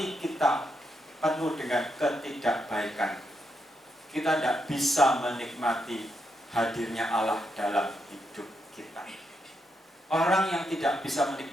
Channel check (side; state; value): both; normal; correlation 0.81